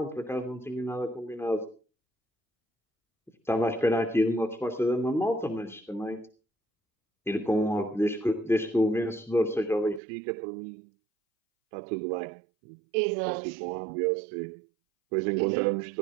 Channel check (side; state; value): left; drops out; at 10.0 s